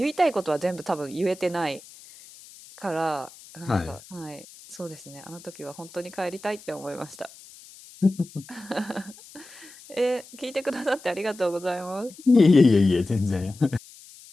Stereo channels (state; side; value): noise; left; hiss, 20 dB below the sound